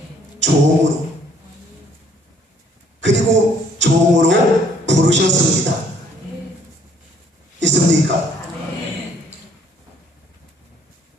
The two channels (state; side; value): normal; both; correlation 0.63